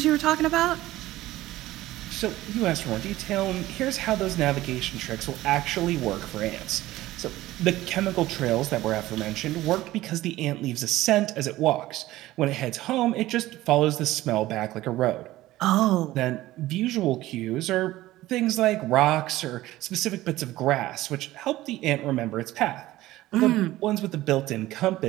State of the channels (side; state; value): left; quieter; 16.4 dB